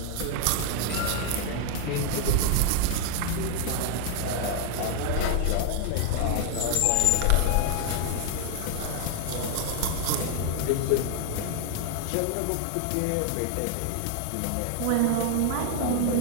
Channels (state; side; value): different; both; correlation 0.00